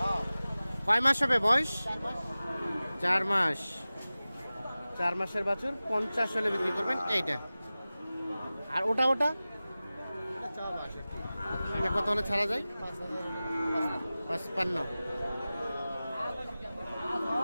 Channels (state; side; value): inverted; both; correlation -0.97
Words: কয় মাস হবে বয়স? 4 মাস। 4 মাসের বাছুর 50 হলে বিক্রি করবেন এইটা। আর ওটা এটা কত হলে ছাড়া যায়? 55।